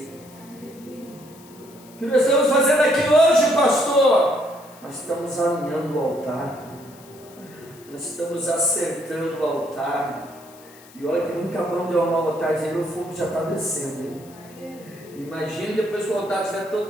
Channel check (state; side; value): noise; left; hiss, 23 dB below the sound